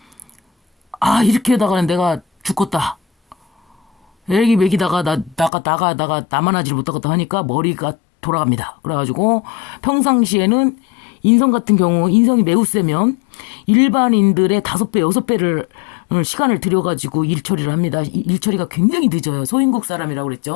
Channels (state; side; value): drops out; right; at 5.5 s